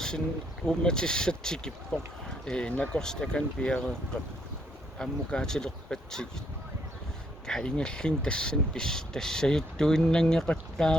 уумматиссатсикиппоқ накорс такан пиареэққап аммукаатилерпатсигит каингаллин тассан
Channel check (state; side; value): normal; both; correlation 0.72